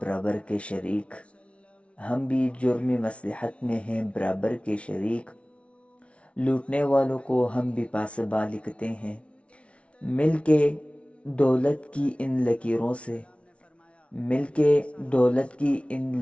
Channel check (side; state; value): right; late; 0.061 ms